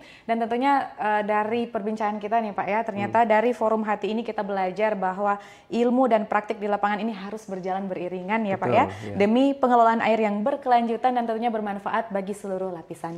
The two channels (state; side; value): identical; both; correlation 1.00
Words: Dan tentunya dari perbincangan kita nih Pak ya, ternyata dari forum Hati ini kita belajar bahwa ilmu dan praktik di lapangan ini harus berjalan beriringan ya Pak ya, demi pengelolaan air yang berkelanjutan dan tentunya bermanfaat bagi seluruh lapisan